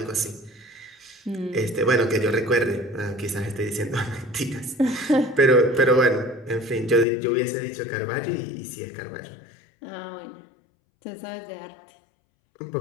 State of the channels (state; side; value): drops out; right; at 7.1 s